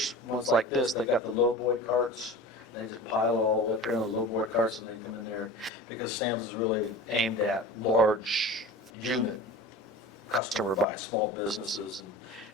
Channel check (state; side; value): normal; both; correlation 0.35